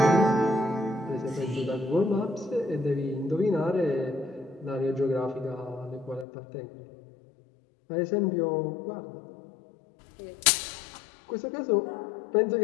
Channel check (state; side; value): drops out; right; at 6.2 s